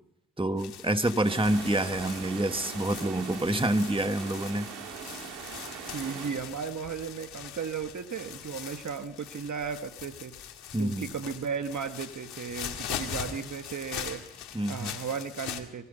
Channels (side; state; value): both; normal; correlation 0.55